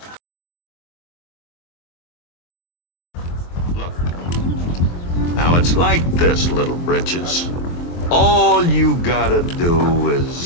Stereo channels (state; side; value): late; right; 23 ms